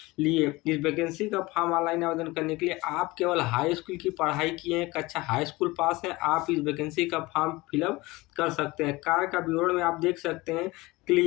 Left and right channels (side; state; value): right; quieter; 21.6 dB